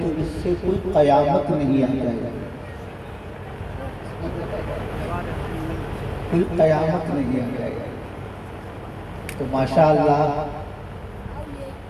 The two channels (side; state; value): both; identical; correlation 1.00